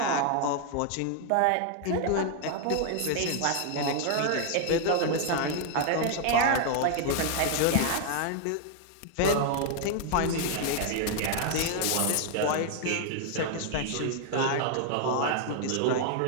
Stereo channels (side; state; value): both; different; correlation 0.00